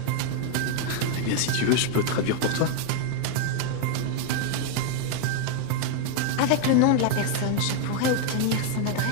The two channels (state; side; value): different; both; correlation 0.00